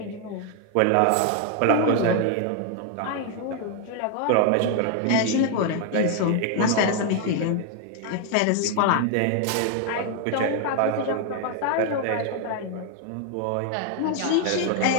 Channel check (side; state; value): both; different; correlation 0.00